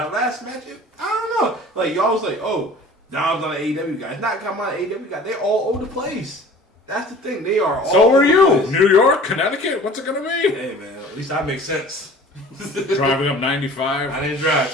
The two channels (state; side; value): normal; both; correlation 0.45